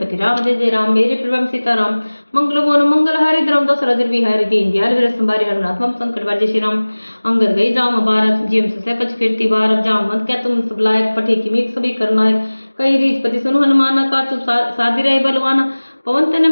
राम जय जय राम मेरे प्रभु सीताराम मंगल मोन मंगल हरि द्रम दशरथ बिहारी दीन दयाल वीर संभारी हरनाथ मम संकट बार जय श्री राम। अंगद गई जाम बारह जिम से कच फिरती बारह जाम मत क्या तुम सब लायक पठे की मीक सभी करना है कई रीच पति सुन हनुमाना का चुप साधी रहे बलवाना पवन तने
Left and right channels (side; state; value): both; inverted; correlation -1.00